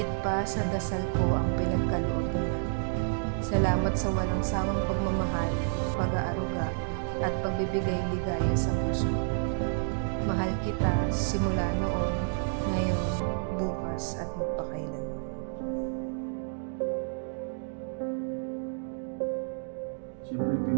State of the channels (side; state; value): left; silent; digital silence